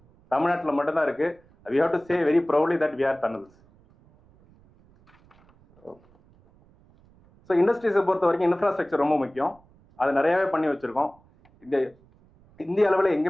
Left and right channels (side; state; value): right; noise; rumble, 30 dB below the sound